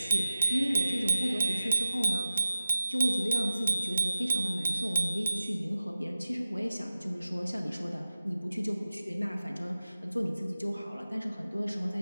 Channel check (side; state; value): both; inverted; correlation -0.97